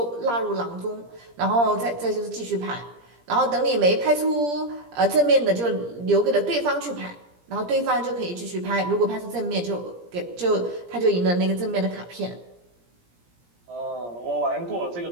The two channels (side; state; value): left; late; 17 ms